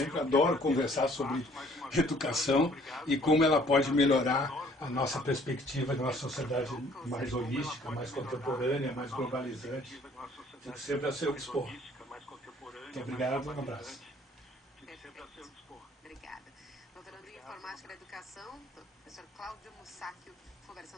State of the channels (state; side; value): normal; both; correlation 0.58